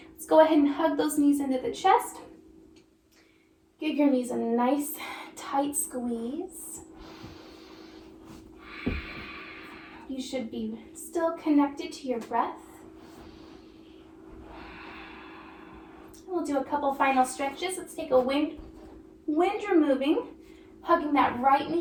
Let's go ahead and hug those knees into the chest. Give your knees a nice tight squeeze. You should be still connected to your breath. We'll do a couple final stretches. Let's take a wind removing, hugging that right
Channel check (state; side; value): identical; both; correlation 1.00